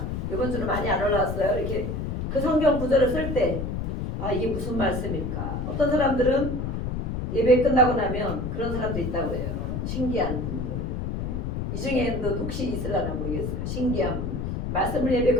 이번 주는 많이 안 올라왔어요. 이렇게 그 성경 구절을 쓸 때 아 이게 무슨 말씀일까? 어떤 사람들은 예배 끝나고 나면 그런 사람도 있다고 해요. 신기한 분들. 이 중에도 혹시 있으려나 모르겠어요. 신기한 분. 말씀을 예배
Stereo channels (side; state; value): left; noise; rumble, 3 dB below the sound